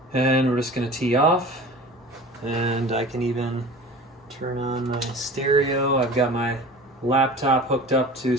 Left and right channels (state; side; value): normal; both; correlation 0.38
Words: And we're just going to tee off, and I can even turn on my stereo. I've got my laptop hooked up to